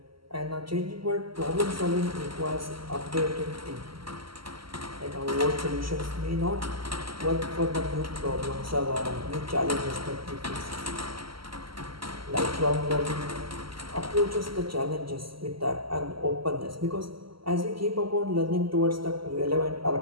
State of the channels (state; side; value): late; left; 0.74 ms